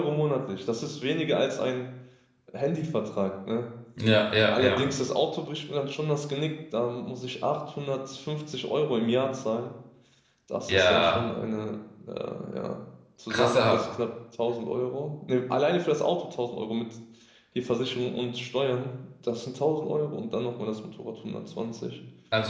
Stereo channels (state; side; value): identical; both; correlation 1.00